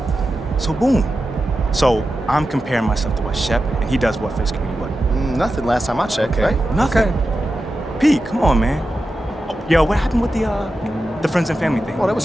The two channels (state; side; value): normal; both; correlation 0.91